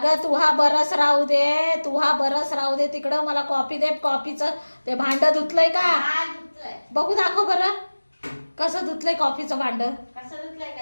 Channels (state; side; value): inverted; both; correlation -1.00